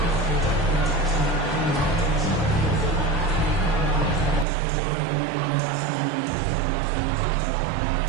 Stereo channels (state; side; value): drops out; left; at 4.5 s